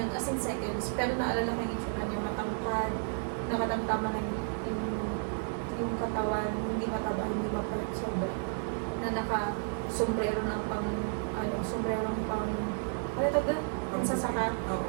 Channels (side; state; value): left; silent; 56 dB below the other